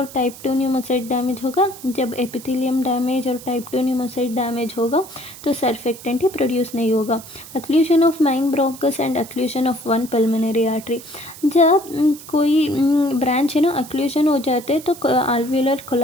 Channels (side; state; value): right; noise; hiss, 16 dB below the sound